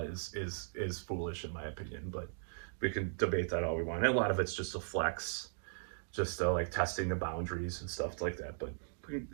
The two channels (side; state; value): left; silent; digital silence